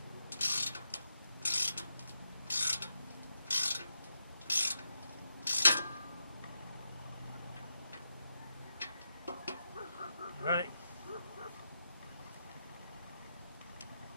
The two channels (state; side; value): inverted; both; correlation -0.86